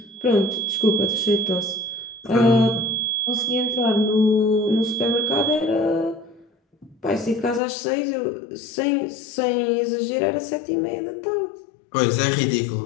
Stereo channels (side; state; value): right; drops out; at 7.6 s